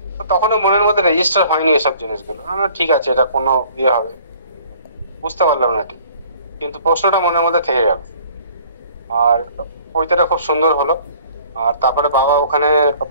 তো তখনও মনের মধ্যে রেজিস্টার হয়নি এসব জিনিসগুলো, ঠিক আছে এটা কোনো ইয়ে হবে, বুঝতে পারলাম না ঠিক, কিন্তু প্রশ্নটা মনের মধ্যে থেকে গেল। আর পৈতেটা খুব সুন্দর হলো। আর তারপরে বাবা ওখানে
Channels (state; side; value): inverted; both; correlation -0.54